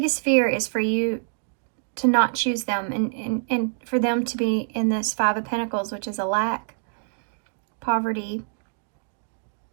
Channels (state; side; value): silent; left; digital silence